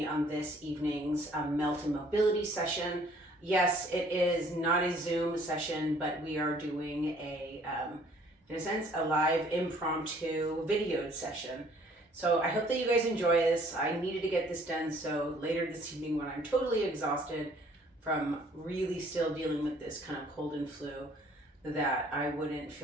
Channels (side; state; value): both; normal; correlation 0.58